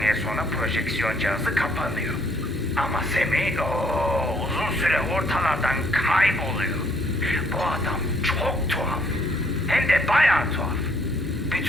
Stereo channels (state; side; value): normal; both; correlation 0.66